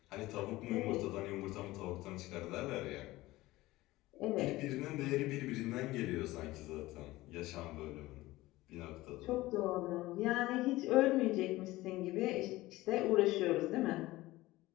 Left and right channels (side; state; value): right; quieter; 18.3 dB